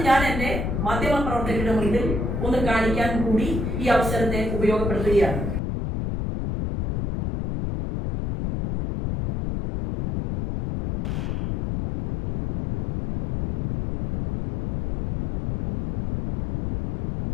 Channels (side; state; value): left; noise; rumble, 2 dB below the sound